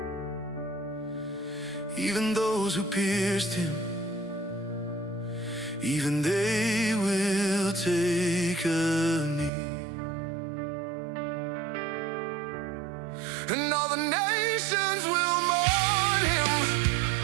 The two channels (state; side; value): drops out; left; at 9.5 s